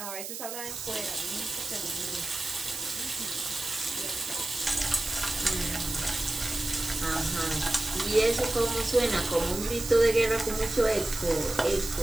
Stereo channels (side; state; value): right; noise; hiss, 7 dB below the sound